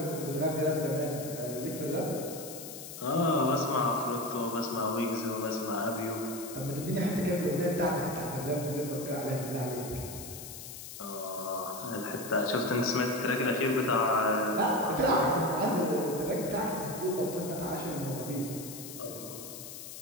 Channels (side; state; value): left; noise; hiss, 11 dB below the sound